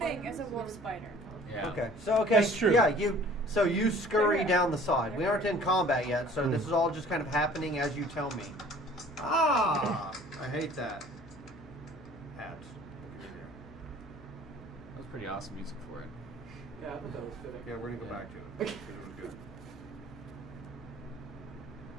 as a wolf spider. Yeah. Okay. So That's true. Yeah, you scurry down the side. We aren't in combat yet, so this is all just kind of happening as you tell me. Ah, I hate that. Hats. That was pretty awesome music for it. Yeah, I thought that was fitting. Yeah, we're gonna go back to it. It was good.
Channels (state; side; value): noise; left; hum, 22 dB below the sound